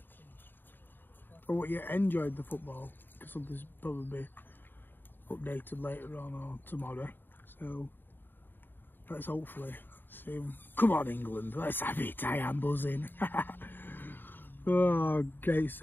I hope you enjoyed the football, because something's probably updated later on or tomorrow. So let's hopefully see them. Come on, England, let's have it. I am buzzing. Oh, great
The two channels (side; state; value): right; late; 0.094 ms